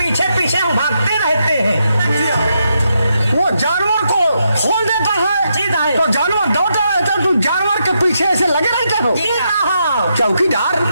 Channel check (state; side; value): inverted; both; correlation -0.81